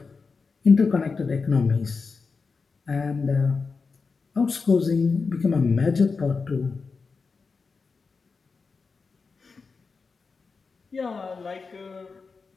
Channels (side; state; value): right; quieter; 4.7 dB